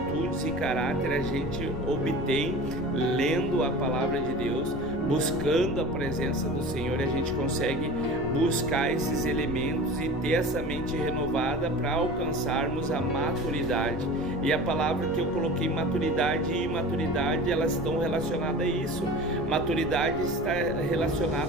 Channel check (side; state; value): left; noise; rumble, 10 dB below the sound